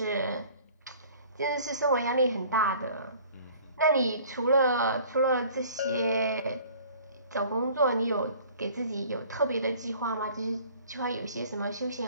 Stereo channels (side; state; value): both; inverted; correlation -0.50